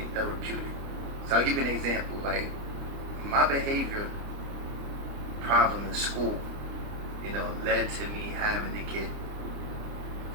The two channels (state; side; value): late; left; 29 ms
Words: therapeutic. So I'll give you an example. Like, my behavior problem in school, you know, led to me having to get